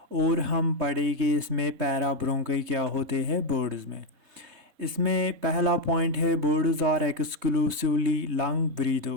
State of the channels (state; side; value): late; left; 3.2 ms